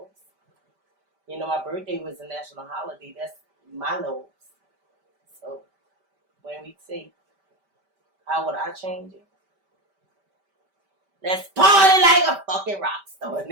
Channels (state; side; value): late; left; 5.1 ms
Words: You know, my birthday was a national holiday. That's my lows. So when we say, how would I change it? Let's party like a fucking rock star. And